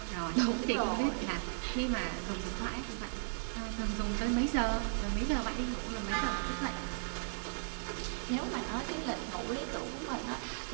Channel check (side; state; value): left; silent; 54 dB below the other